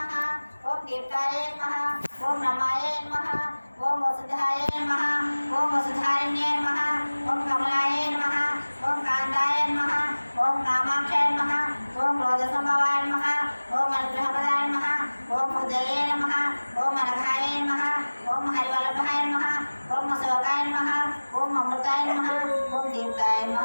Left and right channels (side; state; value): both; inverted; correlation -1.00